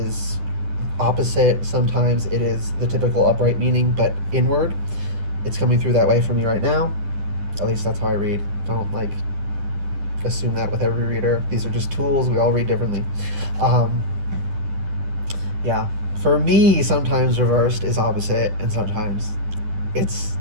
opposite. Sometimes it is the typical upright meaning, but inward. It's coming through that way for me right now. At least that's how I read. Don't, like, assume that with every reader. These are just tools. We all read differently. Yeah. For me, sometimes reversed is opposite, and sometimes it's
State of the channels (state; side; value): late; left; 10 ms